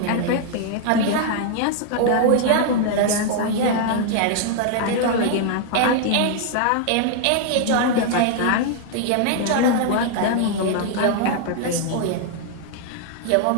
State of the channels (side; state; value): both; different; correlation 0.00